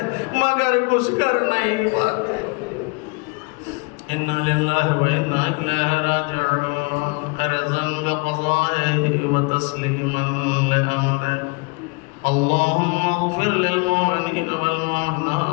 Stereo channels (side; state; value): right; quieter; 29.8 dB